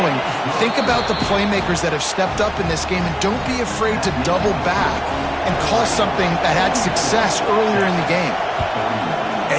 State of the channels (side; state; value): both; identical; correlation 1.00